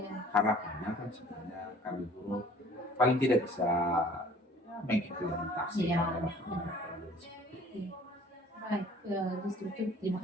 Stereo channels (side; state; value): both; normal; correlation 0.51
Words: Harapannya kan sebenarnya kami guru paling tidak bisa mengimplementasi dalam Baik, justru terima